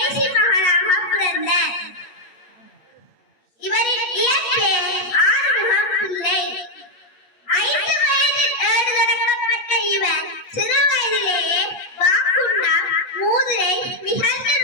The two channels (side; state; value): right; late; 8.3 ms